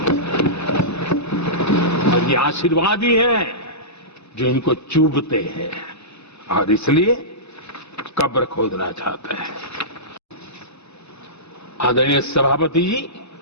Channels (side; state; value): both; normal; correlation -0.18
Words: और ये आशीर्वाद ही है जो इनको चूभते हैं और इसलिए कब्र खोदना चाहते हैं। आदरणीय सभापति जी,